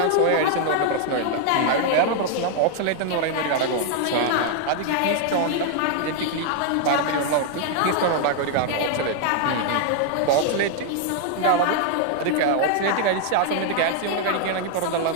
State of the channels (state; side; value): different; both; correlation 0.00